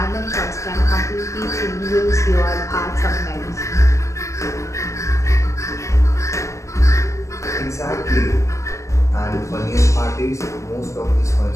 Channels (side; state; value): right; late; 0.15 ms